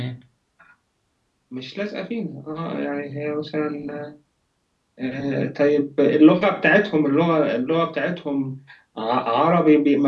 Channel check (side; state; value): both; identical; correlation 1.00